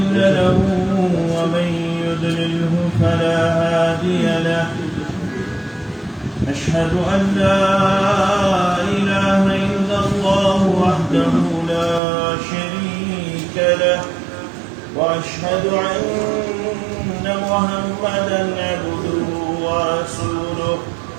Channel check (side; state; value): left; drops out; at 12.0 s